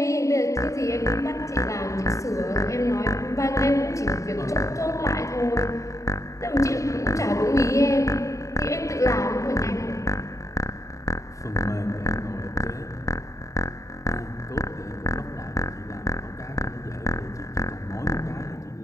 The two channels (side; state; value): right; late; 0.15 ms